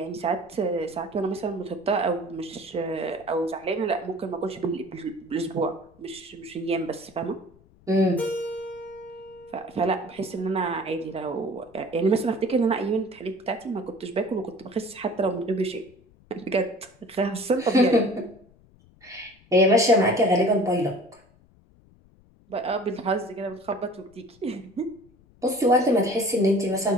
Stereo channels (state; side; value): noise; left; rumble, 28 dB below the sound